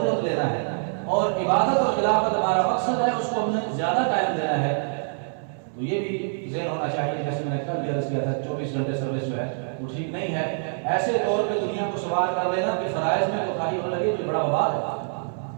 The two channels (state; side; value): silent; left; digital silence